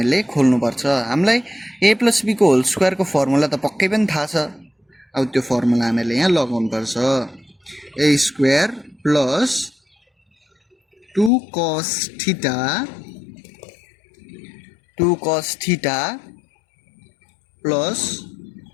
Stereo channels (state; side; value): drops out; right; at 11.3 s